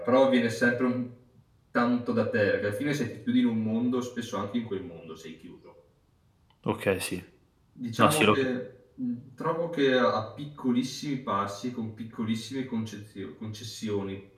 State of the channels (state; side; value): identical; both; correlation 1.00